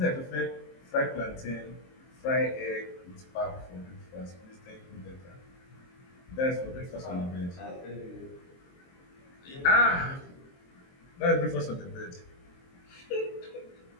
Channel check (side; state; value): right; late; 23 ms